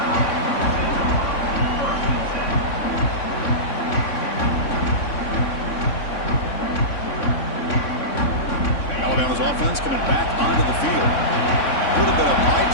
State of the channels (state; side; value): late; right; 3.6 ms